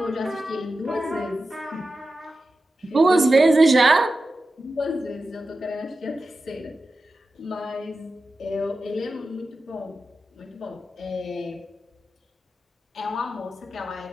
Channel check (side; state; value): both; normal; correlation 0.92